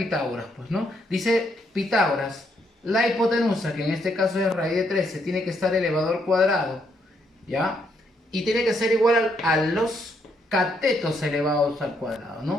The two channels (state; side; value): normal; both; correlation 0.75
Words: pues, ¿no? Dice Pitágoras, la hipotenusa, que en este caso es raíz de 13, tiene que estar elevado al cuadrado, ¿ya? Y tiene que ser igual a los catetos elevados al cuadrado,